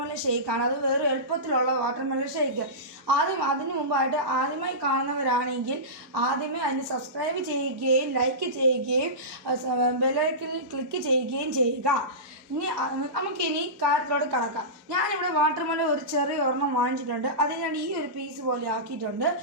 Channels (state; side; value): normal; both; correlation -0.19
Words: ഷേക്കാണ്. അത് വേറെ എളുപ്പത്തിലുള്ള വാട്ടർമെലൺ ഷേക്ക്. അതിനു മുമ്പായിട്ട് ആദ്യമായി കാണുന്നവരാണെങ്കിൽ ആദ്യമേ അതിന് സബ്സ്ക്രൈബ് ചെയ്യുകയും ലൈക്ക് ചെയ്യുകയും ബെല്ലൈക്കണിൽ ക്ലിക്ക് ചെയ്യുകയും ചെയ്യുക. നമുക്കിനി കാര്യത്തിലോട്ട് കടക്കാം. ഞാനിവിടെ വാട്ടർമെലൺ ഒരു ചെറിയ ഒരെണ്ണം വാങ്ങിച്ചിട്ടുണ്ട്. അത് ഞാൻ ഈ ഒരു പീസ് പോലെ ആക്കിയിട്ടുണ്ട്.